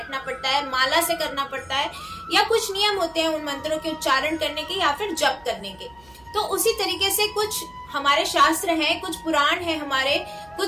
पड़ता है, माला से करना पड़ता है, या कुछ नियम होते हैं उन मंत्रों के उच्चारण करने के या फिर जप करने के। तो उसी तरीके से कुछ हमारे शास्त्र हैं, कुछ पुराण हैं, हमारे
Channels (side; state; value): right; noise; hum, 28 dB below the sound